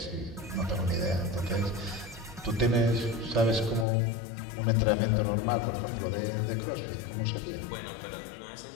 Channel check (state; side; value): drops out; right; at 3.9 s